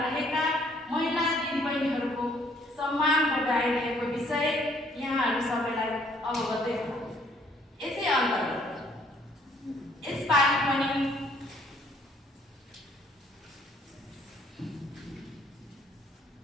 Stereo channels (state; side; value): normal; both; correlation 0.63